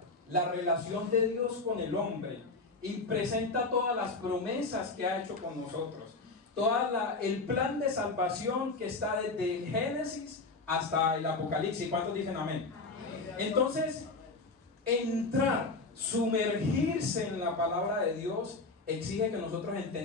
la relación de Dios con el hombre, y presenta todas las promesas que ha hecho con nosotros. El plan de salvación que está desde Génesis hasta el Apocalipsis. ¿Cuántos dicen amén? Entonces, sumergirse en la palabra de Dios exige que nosotros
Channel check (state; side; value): quieter; right; 3.6 dB